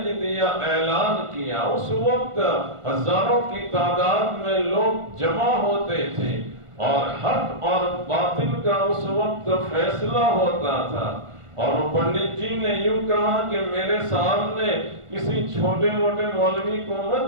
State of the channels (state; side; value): late; left; 1.4 ms